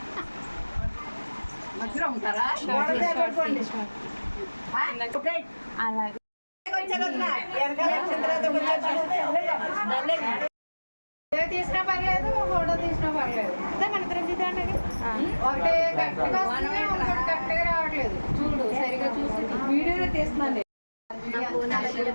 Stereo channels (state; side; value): inverted; both; correlation -1.00